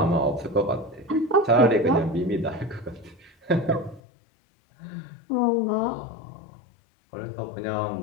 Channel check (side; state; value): right; drops out; at 4.0 s